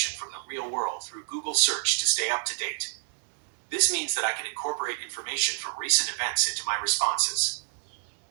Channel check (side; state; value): left; silent; 59 dB below the other